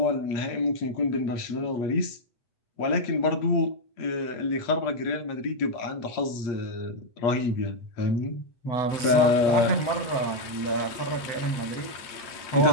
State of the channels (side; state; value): right; late; 8.5 ms